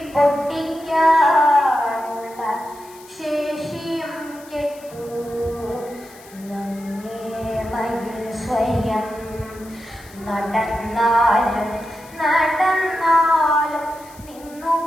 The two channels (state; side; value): noise; left; hiss, 23 dB below the sound